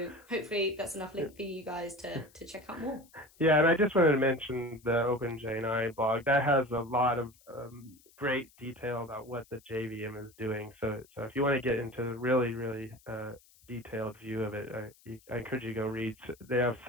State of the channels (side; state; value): left; noise; hiss, 28 dB below the sound